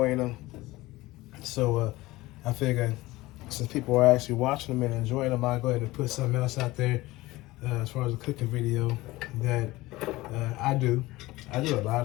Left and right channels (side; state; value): right; quieter; 19.3 dB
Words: them. So I figured since people are actually watching them and enjoying them, I'll go ahead and put something else out there as far as a cooking video that I do. I do a